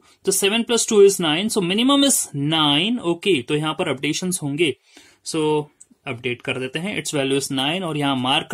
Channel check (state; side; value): identical; both; correlation 1.00